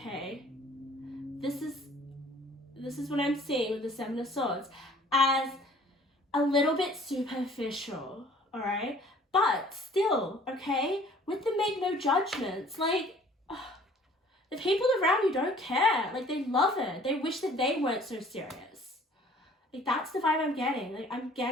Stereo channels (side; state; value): both; normal; correlation 0.53